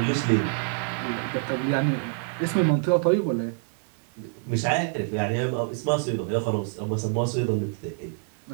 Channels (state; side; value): silent; left; 61 dB below the other